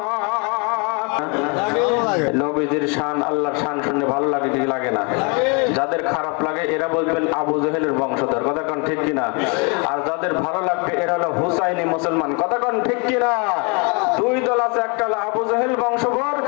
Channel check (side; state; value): right; quieter; 32.8 dB